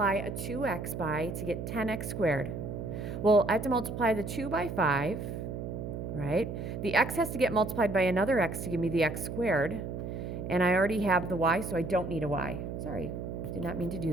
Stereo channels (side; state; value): right; noise; hum, 6 dB below the sound